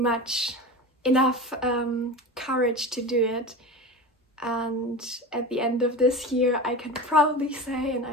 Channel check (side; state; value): both; normal; correlation 0.28